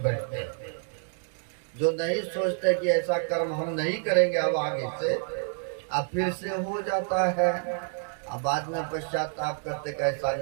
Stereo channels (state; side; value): silent; left; 59 dB below the other